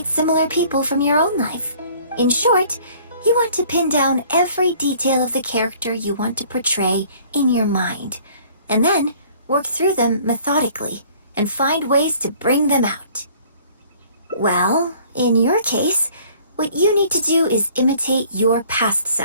similar people from your own life. In short, you want to pin down every detail of the character you want to portray in your mind, and then work through them methodically and find ways to bring them out. Well, in your case, what you need to do is imitate your past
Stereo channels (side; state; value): both; inverted; correlation -0.55